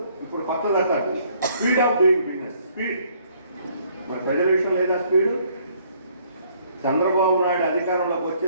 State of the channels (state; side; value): inverted; both; correlation -0.64